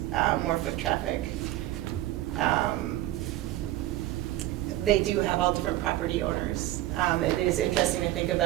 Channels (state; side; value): quieter; left; 15.4 dB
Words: more foot traffic. They do have all different property owners. It is interesting to think